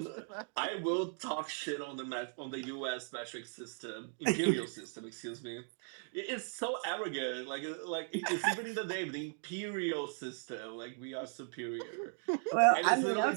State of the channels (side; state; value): left; silent; 53 dB below the other